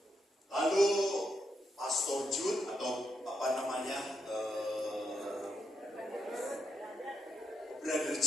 Lalu Pastor Jude atau Brother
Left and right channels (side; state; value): both; normal; correlation 0.81